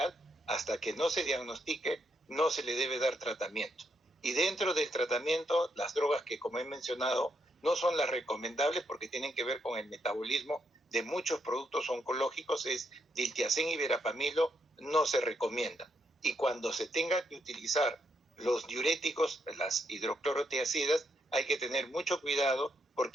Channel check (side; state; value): both; normal; correlation 0.78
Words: hasta que no se diagnostique, no se le debe dar tratamiento. Y dentro del tratamiento, las drogas que, como he mencionado, no son las recomendables porque tienen que ver con el metabolismo de muchos productos oncológicos, es diltiazem y verapamilo, no se recomienda. Y cuando se tenga que utilizar los diuréticos, las hidroclorotiazidas, hay que tener mucho cuidado